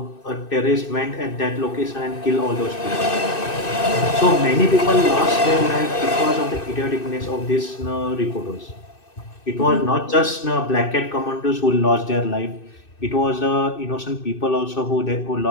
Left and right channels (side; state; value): right; late; 2.6 ms